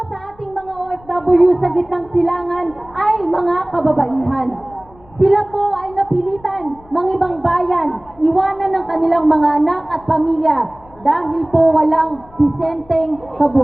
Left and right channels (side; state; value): left; noise; rumble, 25 dB below the sound